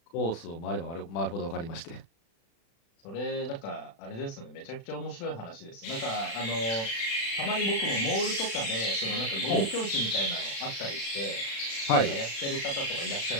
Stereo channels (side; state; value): right; late; 36 ms